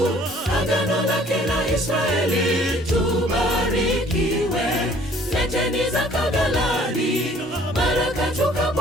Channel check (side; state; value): both; normal; correlation 0.56